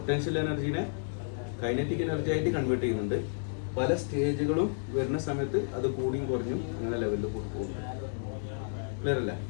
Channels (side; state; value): right; silent; digital silence